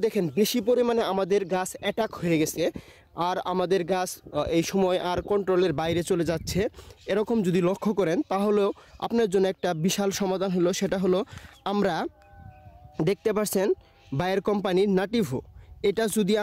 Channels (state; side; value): identical; both; correlation 1.00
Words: দেখেন বেশি পরিমাণে আমাদের গাছ অ্যাটাক হয়ে গেছে আর আমাদের গাছ এই সময় আর কন্ট্রোলের বাইরে চলে যাচ্ছে, এরকম যদি লক্ষ্য করেন তাহলেও আপনার জন্য একটা বিশাল সমাধান হলো। সেটা হলো আমরা দেখতে পাচ্ছেন বায়ার কোম্পানির নাটিভো, এটা যদি